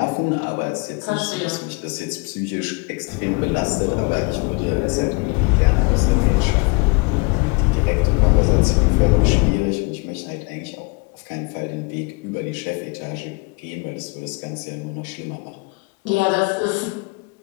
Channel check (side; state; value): right; quieter; 29.7 dB